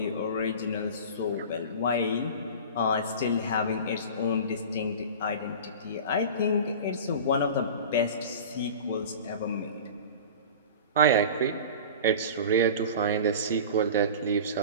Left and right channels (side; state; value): both; inverted; correlation -0.35